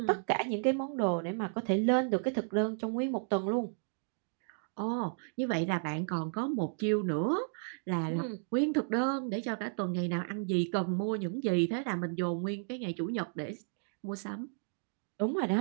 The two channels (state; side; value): silent; left; digital silence